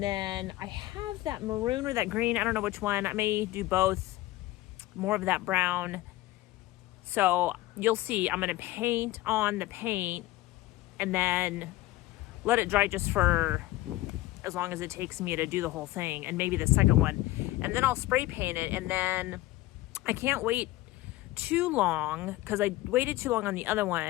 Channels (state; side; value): quieter; right; 17.4 dB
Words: then I have that maroon or that green, I don't know which one. I may do both, more of that brown. So you'll see, I'm gonna paint on the paint and then let it dry just for as long as it takes me to do the whole thing, and maybe the second one. And then I'll spray paint it, and then I can't wait too long because I waited too long on the other